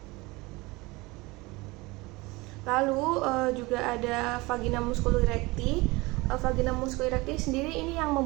Lalu juga ada vagina musculi recti. Vagina musculi recti sendiri ini yang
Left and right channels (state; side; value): quieter; left; 23.0 dB